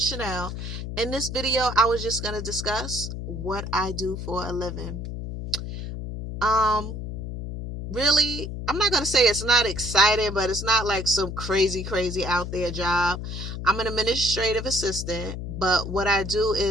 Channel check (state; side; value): noise; left; hum, 6 dB below the sound